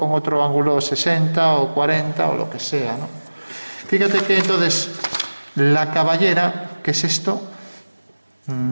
otro ángulo 60 o 40 o lo que sea, ¿no? Fíjate que entonces la caballera, que es esto,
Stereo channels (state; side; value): inverted; both; correlation -1.00